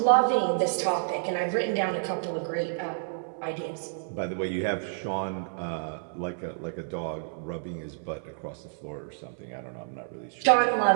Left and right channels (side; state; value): left; silent; 56 dB below the other